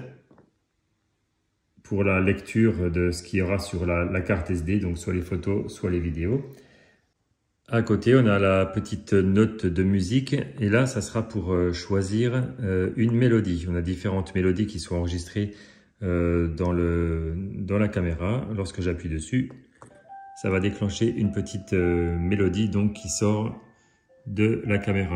pour la lecture de ce qu'il y aura sur la carte SD, donc soit les photos, soit les vidéos. À côté, on a la petite note de musique et là, ça sera pour choisir une mélodie. On a différentes mélodies qui sont enregistrées dans la caméra. Lorsque j'appuie dessus, ça va déclencher une petite mélodie donc, qui sort de la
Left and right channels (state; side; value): identical; both; correlation 1.00